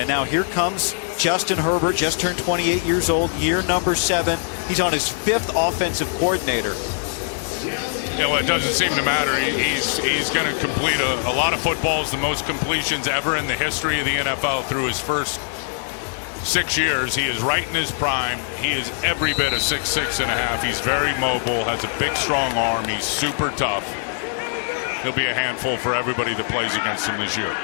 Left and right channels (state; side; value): silent; right; digital silence